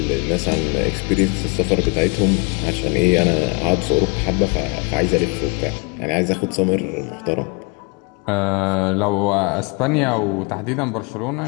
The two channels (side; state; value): right; quieter; 31.9 dB